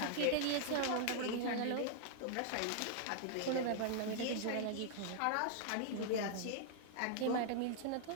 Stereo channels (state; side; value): different; both; correlation -0.01